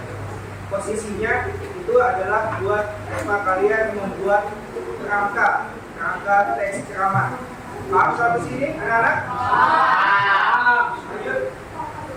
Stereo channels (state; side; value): identical; both; correlation 1.00